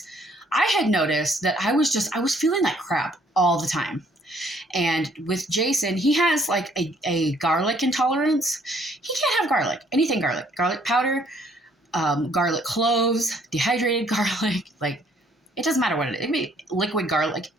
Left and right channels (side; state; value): both; normal; correlation 0.64